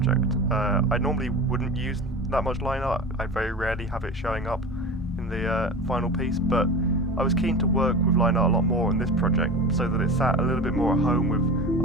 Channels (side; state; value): both; normal; correlation 0.32